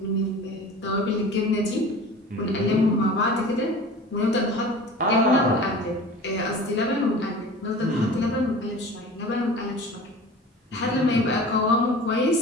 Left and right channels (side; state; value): both; normal; correlation 0.39